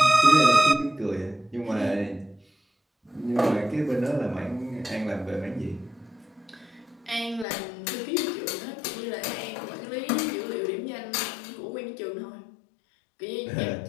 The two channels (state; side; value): drops out; right; at 7.5 s